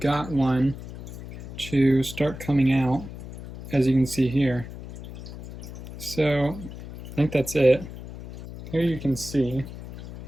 one to start coming out, as you can see here. So I think that's it. Here you can see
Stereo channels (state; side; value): noise; left; hum, 12 dB below the sound